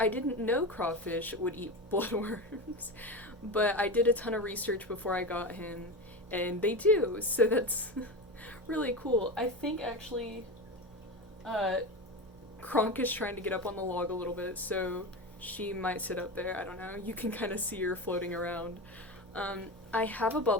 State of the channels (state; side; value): normal; both; correlation 0.21